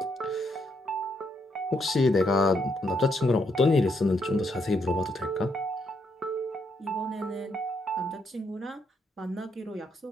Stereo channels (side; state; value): both; normal; correlation 0.76